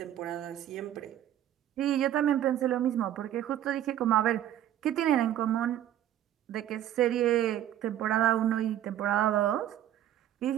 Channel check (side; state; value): left; quieter; 11.7 dB